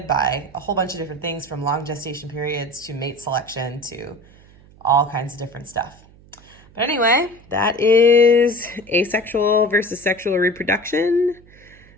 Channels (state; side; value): noise; right; hum, 25 dB below the sound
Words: by a whole bunch of different things, from long gestation periods to mate selection to all kinds of different stuff. But anyway, that is asexual versus sexual reproduction.